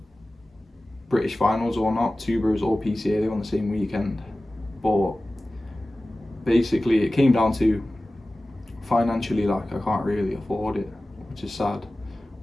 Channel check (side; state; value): both; normal; correlation 0.96